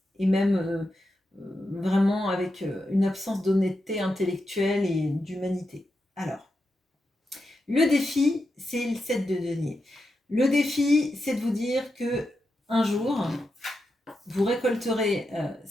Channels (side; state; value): both; normal; correlation 0.87